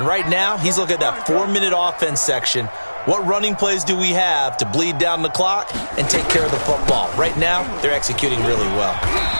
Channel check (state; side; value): inverted; both; correlation -1.00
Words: right now, he's looking at that 4-minute offense section. What running plays do we have to bleed down the clock and take care of the football? Right now, they're executing really well.